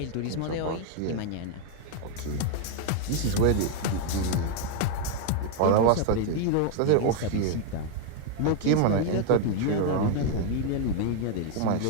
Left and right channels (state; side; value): different; both; correlation 0.01